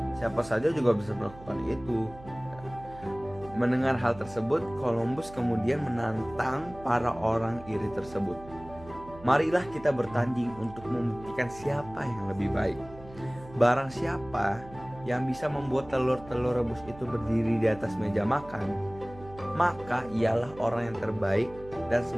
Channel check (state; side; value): noise; right; hum, 18 dB below the sound